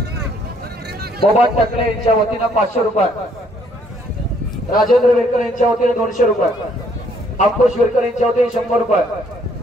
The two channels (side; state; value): both; normal; correlation 0.66